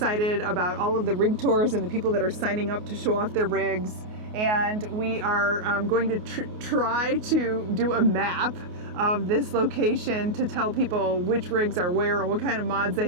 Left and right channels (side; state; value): left; late; 28 ms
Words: about all of the rig tours and the people that are signing up to show off their rigs. And we are going to try to do a map of this location to tell people which rigs are where and what kind of mods they